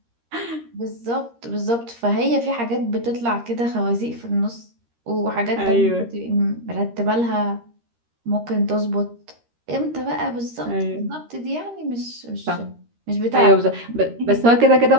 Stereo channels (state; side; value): late; left; 13 ms